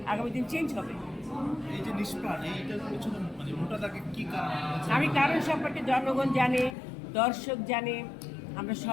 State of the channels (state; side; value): drops out; right; at 6.8 s